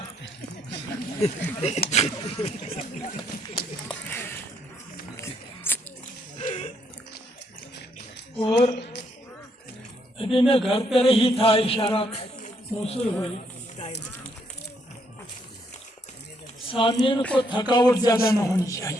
और अभी मैं घर पर ही था, इशारा मौसूल हुई। सामीन को थकावट ज्यादा न होनी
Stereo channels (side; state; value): both; normal; correlation 0.72